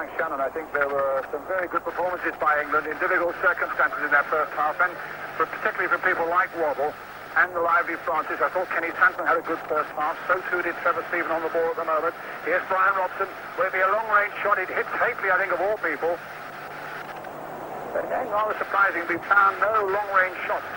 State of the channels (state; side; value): identical; both; correlation 1.00